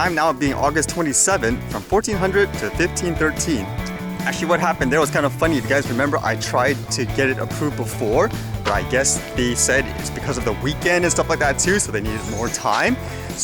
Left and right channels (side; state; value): both; identical; correlation 1.00